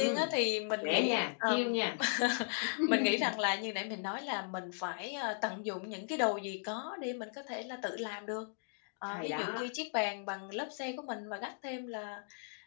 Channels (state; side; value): silent; right; digital silence